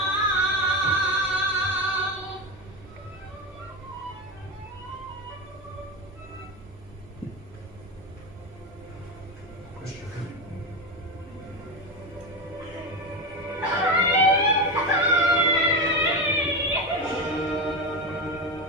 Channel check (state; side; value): normal; both; correlation 0.17